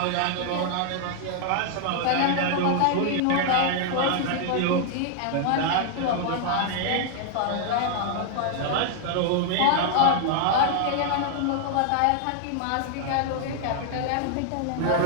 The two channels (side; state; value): both; different; correlation 0.00